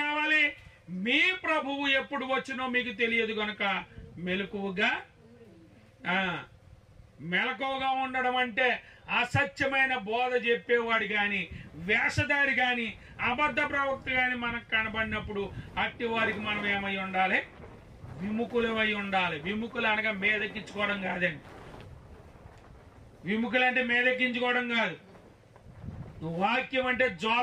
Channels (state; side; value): identical; both; correlation 1.00